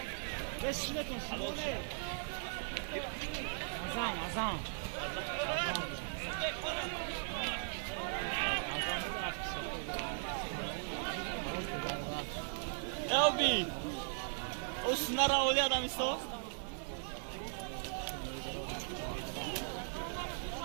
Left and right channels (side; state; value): left; silent; 52 dB below the other